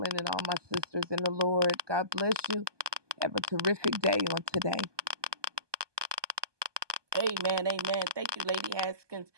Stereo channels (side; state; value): left; late; 1.2 ms